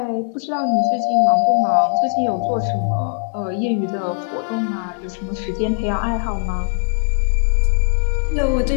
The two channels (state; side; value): silent; right; 63 dB below the other